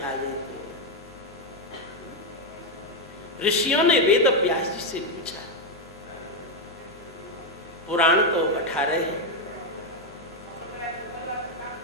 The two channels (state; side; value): normal; both; correlation 0.04